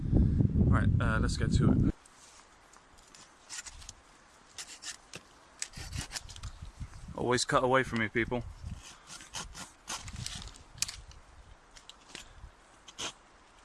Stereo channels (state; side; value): identical; both; correlation 1.00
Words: Right, let's get to it. Always cut away from me, people.